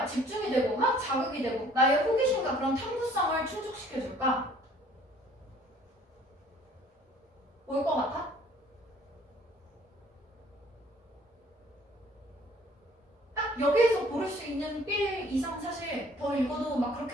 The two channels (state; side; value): normal; both; correlation 0.56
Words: 집중이 되고 막 자극이 되고 나의 호기심과 그런 탐구성을 충족시켜줄까? 뭘 것 같아? 딱 여기에서 고를 수 있는 빌 이상 사실 더 읽어도 막